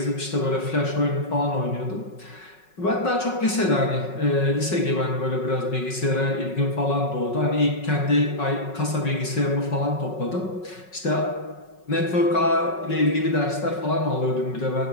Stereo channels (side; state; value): right; late; 5.4 ms